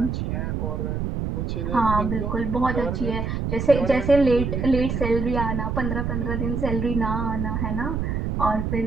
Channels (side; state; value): right; noise; rumble, 2 dB below the sound